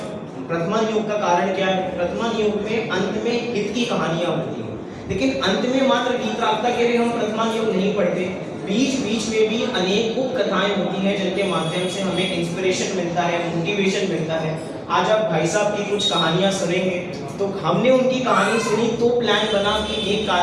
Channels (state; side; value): identical; both; correlation 1.00